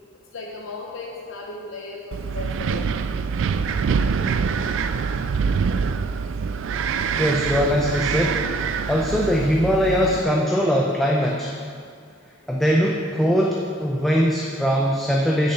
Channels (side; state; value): both; normal; correlation 0.65